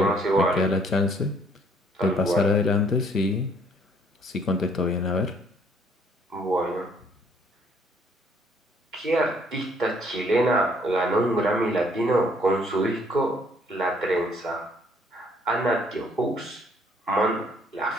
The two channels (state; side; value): normal; both; correlation 0.63